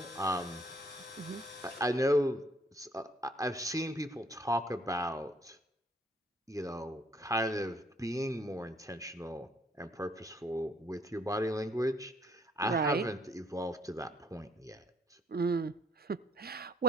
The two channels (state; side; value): normal; both; correlation 0.63